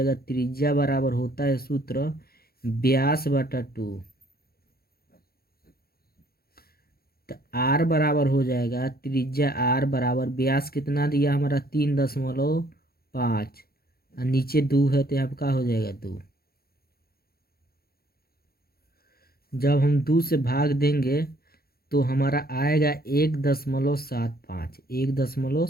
त्रिज्या बराबर होता है सूत्र व्यास बटा 2। तो आर बराबर हो जाएगा त्रिज्या आर बराबर व्यास कितना दिया हमारा 3.5 और नीचे 2 है तो यहाँ पे क्या हो जाएगा 2। जब हम 2 से भाग देंगे तो हमारा आएगा 1.75,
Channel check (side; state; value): right; late; 0.44 ms